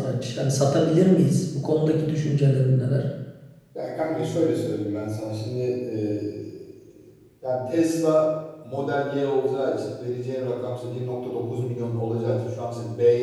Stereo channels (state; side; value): identical; both; correlation 1.00